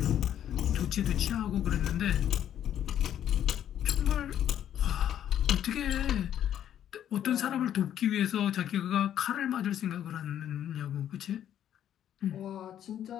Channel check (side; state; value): right; quieter; 10.5 dB